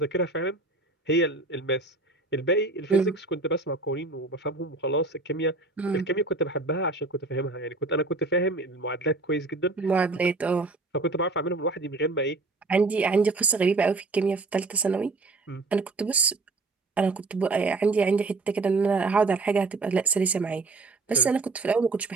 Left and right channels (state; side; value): quieter; left; 3.4 dB